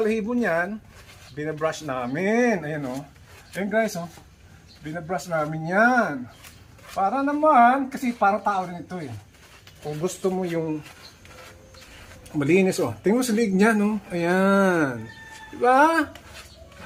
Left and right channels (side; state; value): both; identical; correlation 1.00